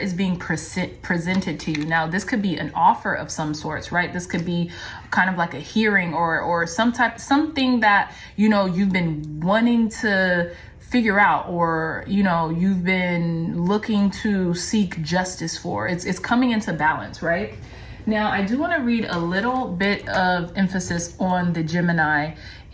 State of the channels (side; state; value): both; identical; correlation 1.00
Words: being presented to you. Now, this could be an offer of some sorts, right? This could be kind of like a hearing or something that, you know, you've been wanting to figure out, or, you know, you've been looking to seek justice for. It's coming into balance, right? Now, I do want to read a little bit of emphasis on the Gemini